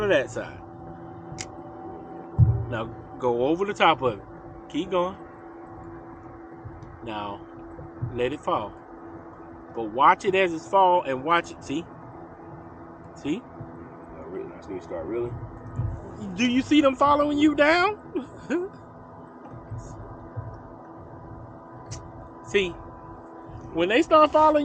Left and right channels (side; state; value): both; identical; correlation 1.00